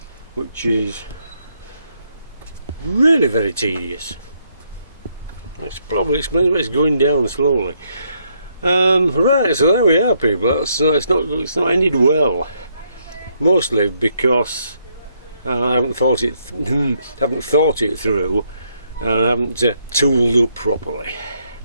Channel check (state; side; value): inverted; both; correlation -0.74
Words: which is really very tedious. That's probably explains why it's going down slowly. Right, so there we are, people. It's not ended well. Mostly because I haven't thought it through, and I haven't tooled up properly.